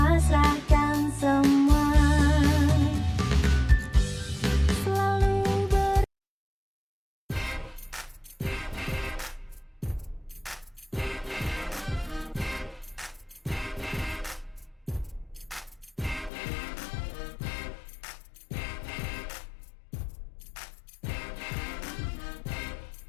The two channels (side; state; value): right; drops out; at 16.3 s